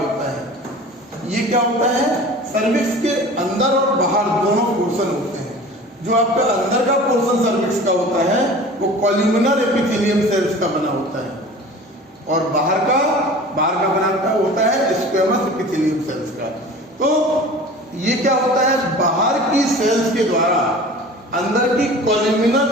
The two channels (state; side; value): normal; both; correlation 0.40